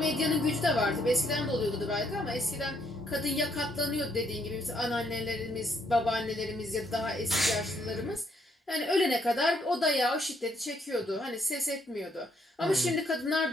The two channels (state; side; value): normal; both; correlation 0.72